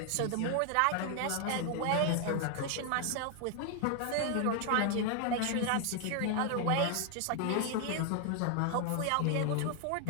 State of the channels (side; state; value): both; different; correlation 0.00